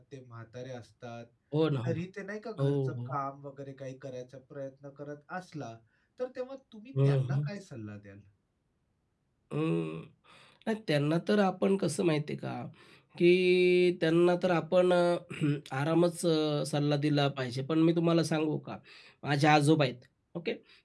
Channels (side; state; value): both; identical; correlation 1.00